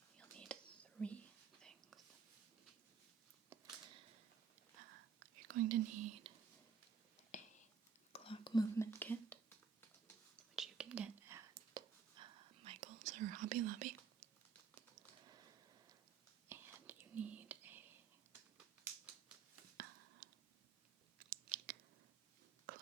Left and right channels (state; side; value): quieter; left; 6.2 dB